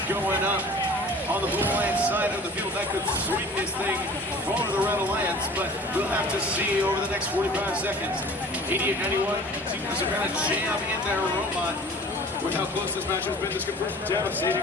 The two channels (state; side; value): normal; both; correlation 0.44